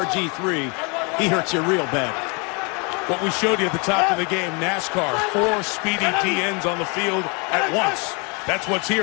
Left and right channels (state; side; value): quieter; right; 32.2 dB